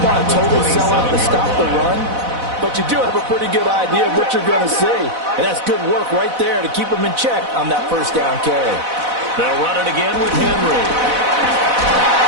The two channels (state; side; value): late; left; 4.0 ms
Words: to totally sell out to stop the run, but you do have a pretty good idea of what you're going to see. And that's good work right there to keep them in check on that 1st down carry. They'll run it again with Henry.